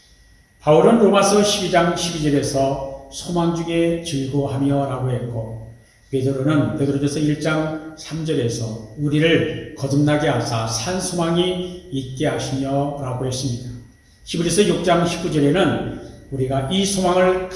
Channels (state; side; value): identical; both; correlation 1.00